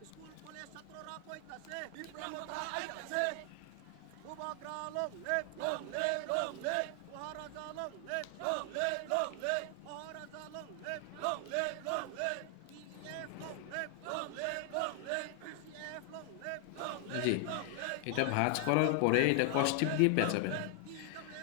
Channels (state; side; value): different; both; correlation 0.00